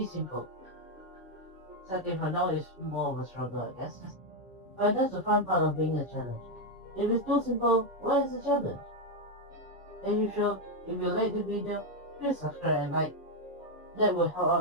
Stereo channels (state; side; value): normal; both; correlation 0.03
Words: simple. Second for now is more of a struggle, I guess. But that's the fun part of being a challenge. If it's too simple, what is the challenge? As usual, if you like the video, please subscribe and like. That will help